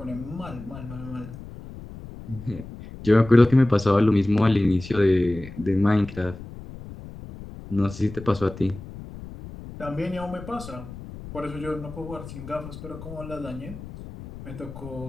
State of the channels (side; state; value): left; noise; rumble, 14 dB below the sound